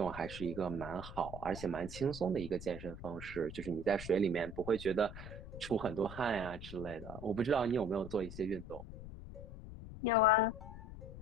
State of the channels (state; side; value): noise; left; rumble, 11 dB below the sound